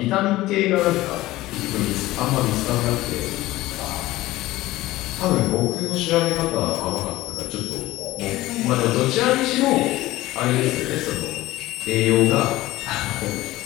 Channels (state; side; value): quieter; right; 17.4 dB